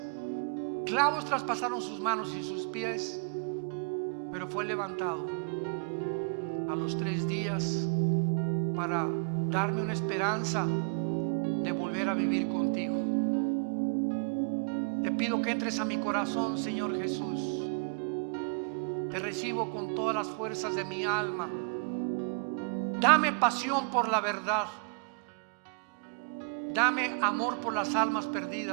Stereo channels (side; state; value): left; quieter; 39.5 dB